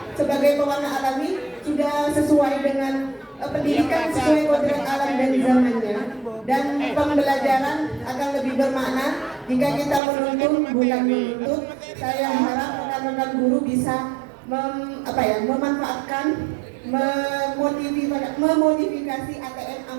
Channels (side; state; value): left; drops out; at 10.0 s